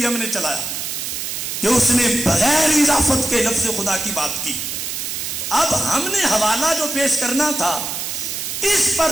ہم نے چلایا کہ اس نے بغیر اضافت کے لفظ خدا کی بات کی. اب ہم نے حوالہ جو پیش کرنا تھا اس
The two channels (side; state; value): right; noise; hiss, 4 dB below the sound